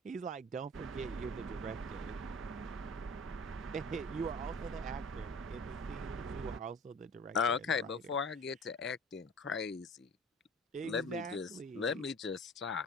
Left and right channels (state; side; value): normal; both; correlation 0.43